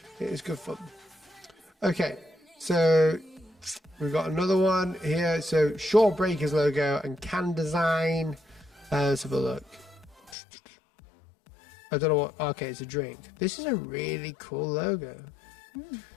It is good fun. Okay, so we've got another one here. So Shore Breakers logo and can design. Let's have a look. I don't know what. Okay, it's a drink. This is a really cool logo.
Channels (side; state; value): right; drops out; at 10.4 s